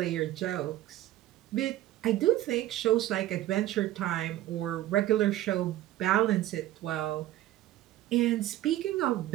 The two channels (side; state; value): left; quieter; 14.5 dB